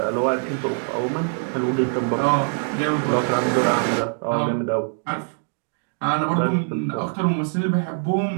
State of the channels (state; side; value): silent; left; 58 dB below the other